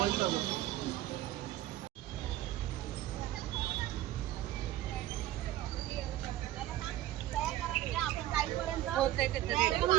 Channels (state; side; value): quieter; left; 14.5 dB